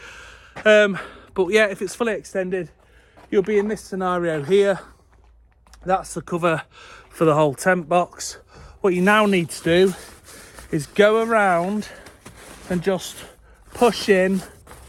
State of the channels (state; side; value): identical; both; correlation 1.00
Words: But yeah, if it's fully extended, you'll be in this scenario here. That's the cover for the whole tent box. What you now need to do is go around and just push in